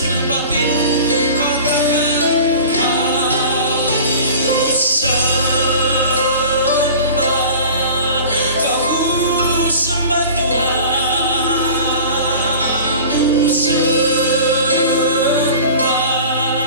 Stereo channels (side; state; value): both; inverted; correlation -0.40